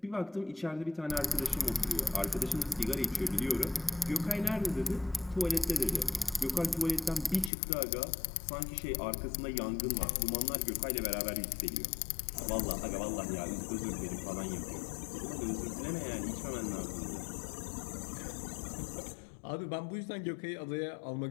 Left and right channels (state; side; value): drops out; right; at 7.5 s